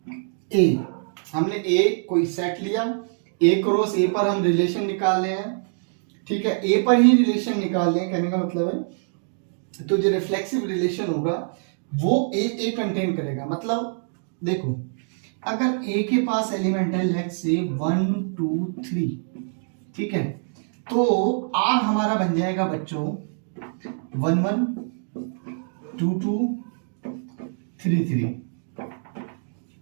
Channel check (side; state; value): left; silent; digital silence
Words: A। हमने A कोई सेट लिया, A क्रॉस A पर हम रिलेशन निकाल रहे हैं। ठीक है, A पर ही रिलेशन निकाल रहे हैं, कहने का मतलब है तो जो रिफ्लेक्सिव रिलेशन होगा वो A कंटेन करेगा। मतलब देखो, अगर A के पास एलिमेंट है लेट्स से 1 2 3, ठीक है, तो R हमारा बन जाएगा बच्चों 1 1 2 2 3 3।